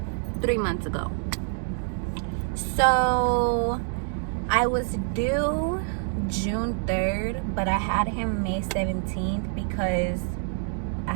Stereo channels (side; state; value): left; silent; 61 dB below the other